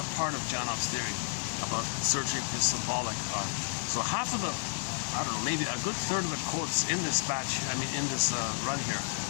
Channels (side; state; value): right; silent; digital silence